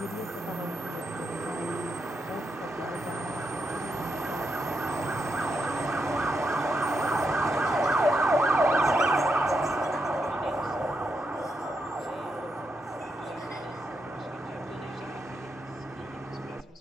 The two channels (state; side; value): normal; both; correlation 0.82